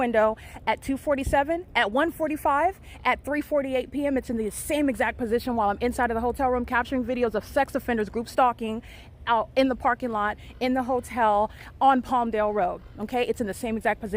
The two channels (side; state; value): both; identical; correlation 1.00